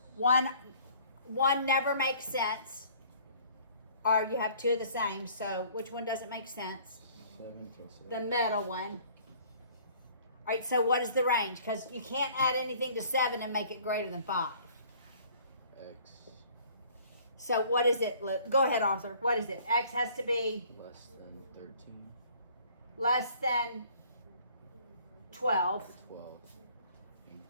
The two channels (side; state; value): both; inverted; correlation -0.55